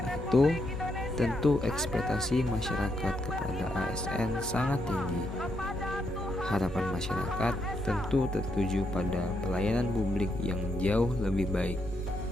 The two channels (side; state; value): both; normal; correlation 0.79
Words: itu, tentu ekspektasi masyarakat kepada ASN sangat tinggi. Harapan masyarakat tentu tertuju pada pelayanan publik yang jauh lebih baik.